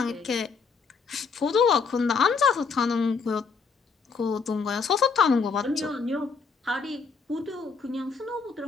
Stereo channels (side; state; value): right; quieter; 5.2 dB